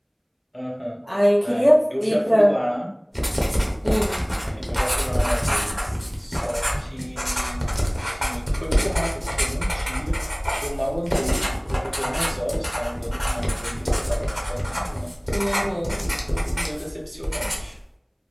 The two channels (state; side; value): identical; both; correlation 1.00